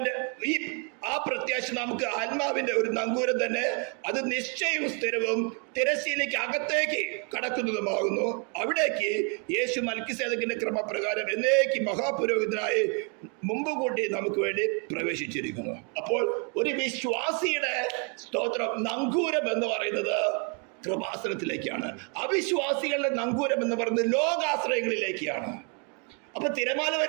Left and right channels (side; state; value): left; quieter; 37.4 dB